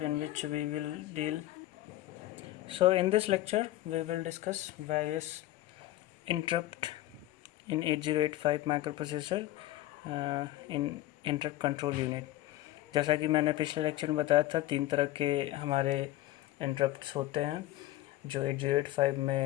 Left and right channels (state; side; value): quieter; right; 15.5 dB